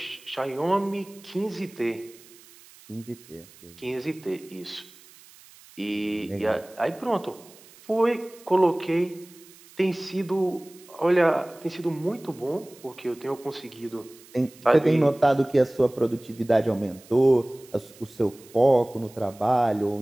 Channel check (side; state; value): right; noise; hiss, 23 dB below the sound